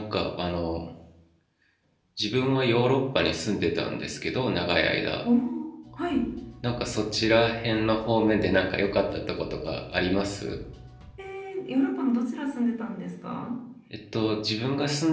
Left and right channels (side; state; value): both; identical; correlation 1.00